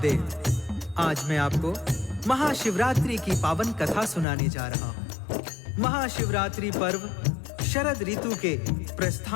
आज मैं आपको महाशिवरात्रि की पावन कथा सुनाने जा रहा हूँ। महाशिवरात्रि पर्व शरद ऋतु के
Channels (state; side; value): drops out; right; at 4.2 s